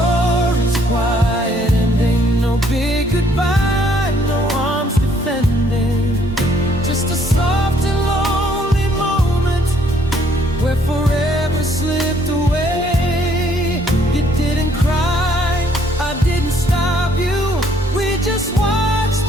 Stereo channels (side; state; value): both; normal; correlation 0.65